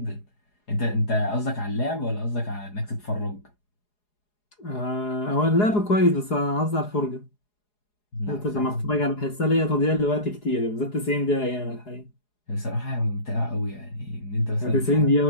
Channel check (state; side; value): late; right; 4.8 ms